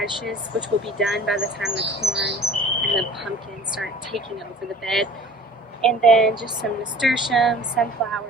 which will be done by the time the corn and the pumpkins start taking over the bed. And then just some nasturtium,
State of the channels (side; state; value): both; normal; correlation 0.46